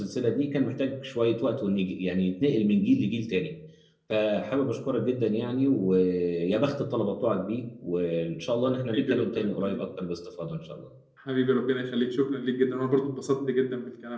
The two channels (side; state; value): both; identical; correlation 1.00